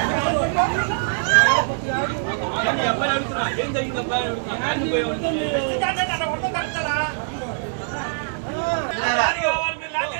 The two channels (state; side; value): silent; left; digital silence